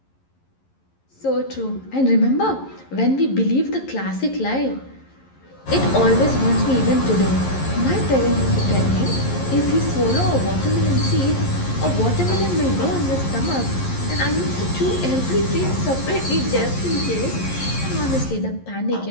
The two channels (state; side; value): late; right; 11 ms